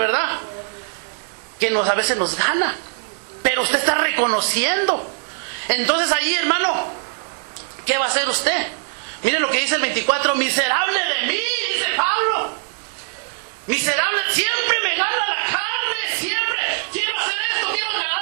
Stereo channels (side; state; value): left; silent; digital silence